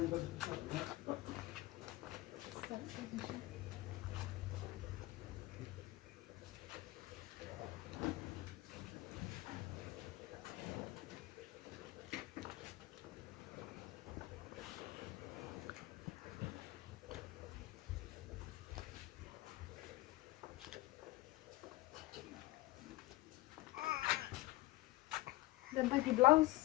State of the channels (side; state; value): right; quieter; 19.1 dB